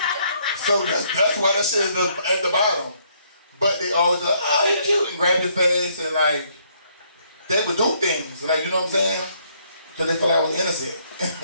So that's why that shit is at the bottom. But they always like, oh, you cute, and grab your face and like, they would do things. Like, you know what I'm saying? Because they feel like I was innocent.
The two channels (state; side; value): inverted; both; correlation -0.68